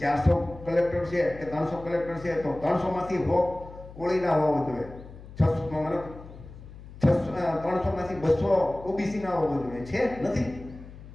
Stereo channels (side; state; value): left; noise; hum, 16 dB below the sound